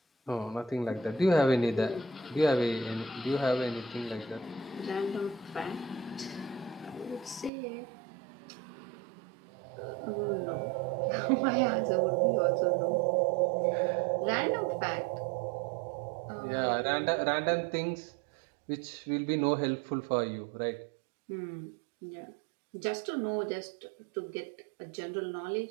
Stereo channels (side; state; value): left; drops out; at 7.5 s